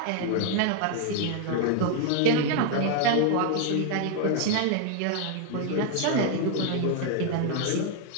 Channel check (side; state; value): both; different; correlation 0.00